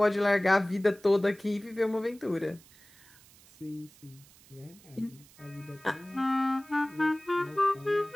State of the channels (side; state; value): right; noise; hiss, 25 dB below the sound